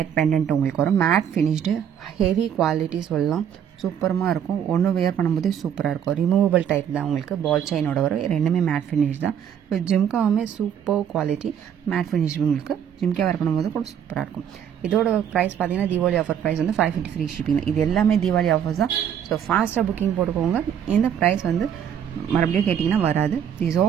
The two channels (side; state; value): left; quieter; 8.9 dB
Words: பெண்டன்ட் உங்களுக்கு வரும். மேட் ஃபினிஷ்டு ஹெவி குவாலிட்டி சொல்லலாம். சூப்பரமாக இருக்கும். ஒன்று வியர் பண்ணும்போதே சூப்பராக இருக்கும். ரிமூவபிள் டைப் தான் உங்களுக்கு. பால் செயினோட வரும். ரெண்டுமே மேட் ஃபினிஷ் தான். இப்போ ஜிம்காவுமே சூப்பர் குவாலிட்டி மேட் ஃபினிஷ் உங்களுக்கு. ஜிம்கா வேர் பண்ணும்போது கூட சூப்பராக இருக்கும். இதோட ப்ரைஸ் பார்த்தீங்கன்னா தீபாவளி ஆஃபர் ப்ரைஸ் வந்து 550 ஃப்ரீ ஷிப்பிங். இது எல்லாமே தீபாவளி ஆஃபர்ஸ் தான். ஸோ ஃபாஸ்ட்டாக புக்கிங் போட்டுக்கோங்க. இந்த ப்ரைஸ் வந்து மறுபடியும் கேட்டிங்கன்னா வராது. Is